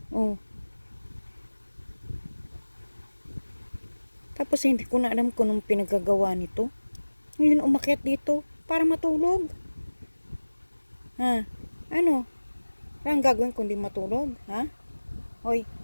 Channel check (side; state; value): both; inverted; correlation -1.00